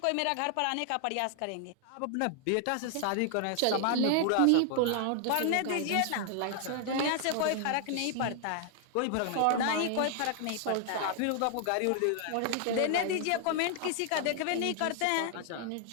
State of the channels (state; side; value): different; both; correlation 0.00